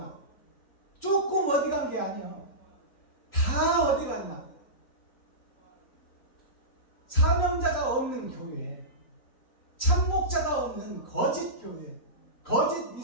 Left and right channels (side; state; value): right; late; 3.9 ms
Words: 조금 어디 간 게 아니야. 다 어디 갔나? 사명자가 없는 교회, 참목자가 없는 거짓 교회, 거짓